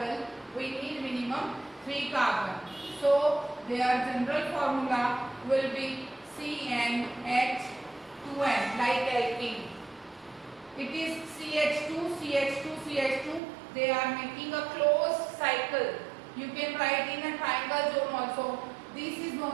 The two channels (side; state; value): left; drops out; at 13.4 s